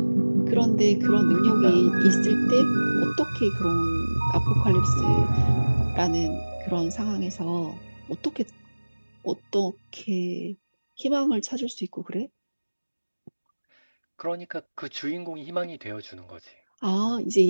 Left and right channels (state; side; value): inverted; both; correlation -1.00